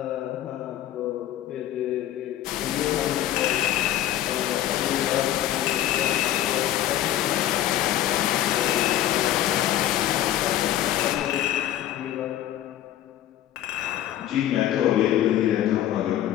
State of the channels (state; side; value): quieter; right; 12.6 dB